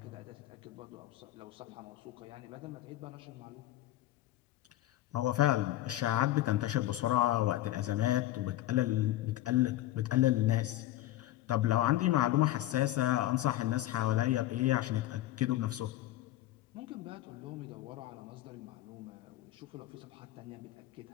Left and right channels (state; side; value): quieter; right; 14.9 dB